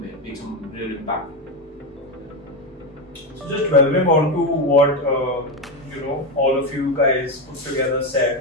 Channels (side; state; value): both; normal; correlation 0.12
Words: real impact. So just delving on to what all of you guys put together